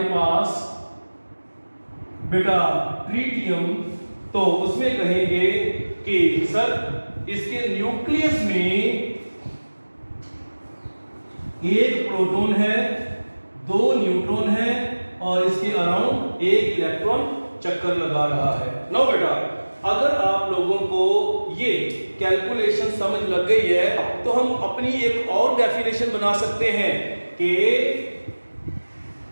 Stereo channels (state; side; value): inverted; both; correlation -1.00